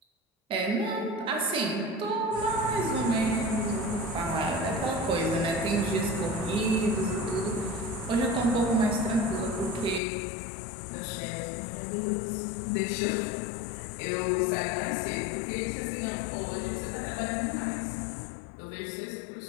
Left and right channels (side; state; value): right; drops out; at 10.0 s